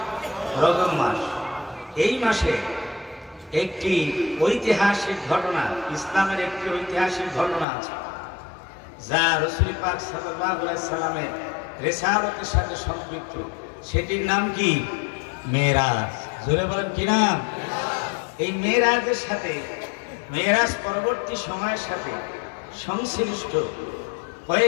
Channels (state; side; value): drops out; right; at 7.7 s